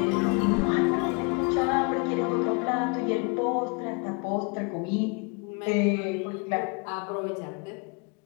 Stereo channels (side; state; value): right; quieter; 32.3 dB